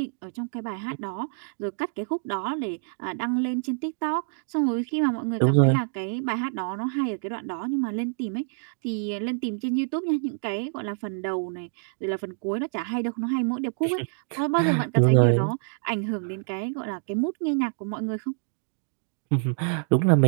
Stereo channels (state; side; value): silent; left; digital silence